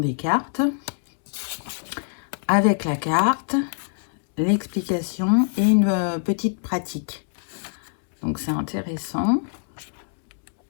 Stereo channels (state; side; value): silent; right; digital silence